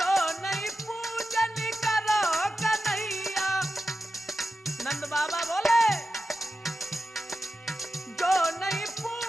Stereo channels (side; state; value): both; normal; correlation 0.92